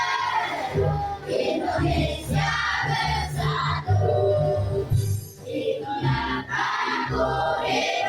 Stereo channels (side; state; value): both; identical; correlation 1.00